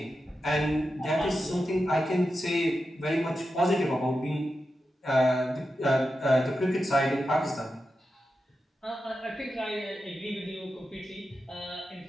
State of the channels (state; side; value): normal; both; correlation 0.90